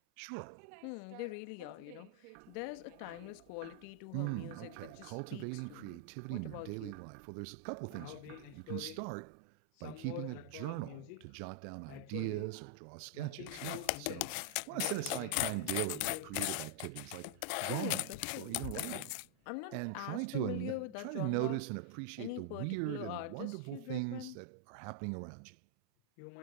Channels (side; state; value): both; different; correlation -0.01